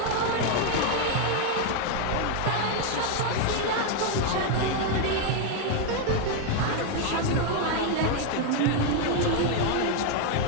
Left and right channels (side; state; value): both; different; correlation 0.01